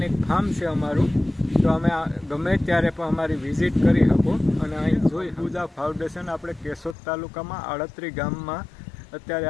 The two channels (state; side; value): drops out; right; at 7.0 s